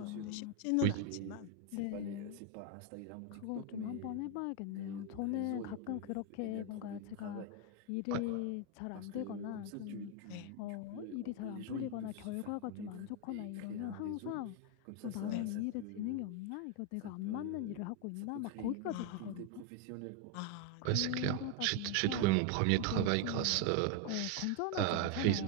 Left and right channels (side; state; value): both; different; correlation 0.01